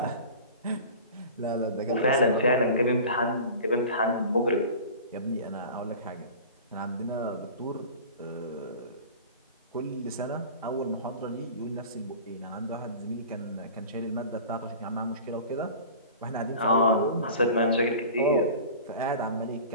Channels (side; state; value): both; inverted; correlation -0.38